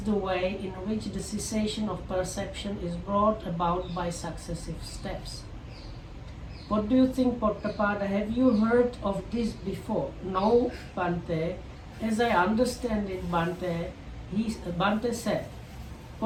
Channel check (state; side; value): identical; both; correlation 1.00